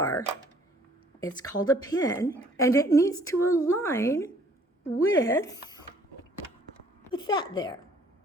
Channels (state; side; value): normal; both; correlation 0.59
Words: it's called a pin, and it needs to align with that there.